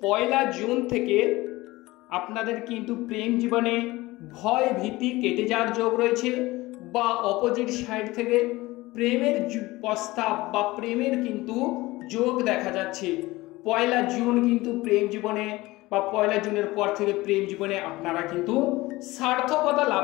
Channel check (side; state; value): right; quieter; 19.9 dB